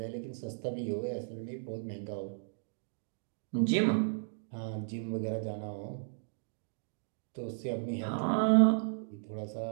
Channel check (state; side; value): silent; left; digital silence